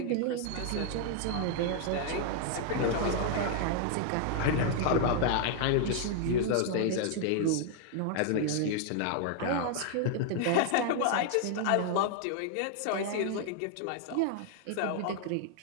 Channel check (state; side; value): different; both; correlation 0.00